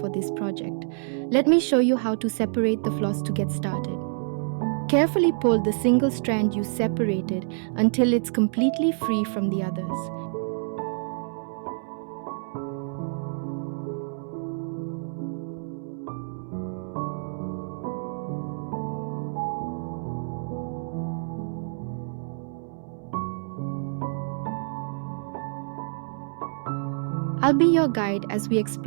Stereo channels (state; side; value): silent; left; 60 dB below the other